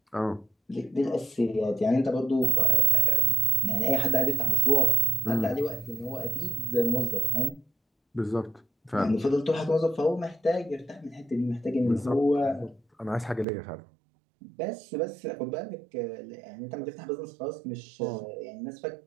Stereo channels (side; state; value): left; drops out; at 13.5 s